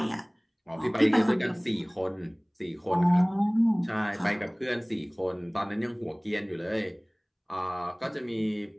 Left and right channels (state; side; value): identical; both; correlation 1.00